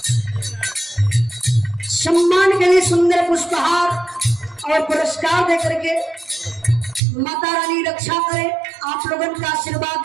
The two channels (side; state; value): left; drops out; at 7.0 s